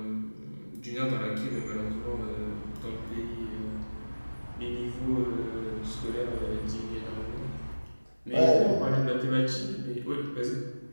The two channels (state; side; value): inverted; both; correlation -1.00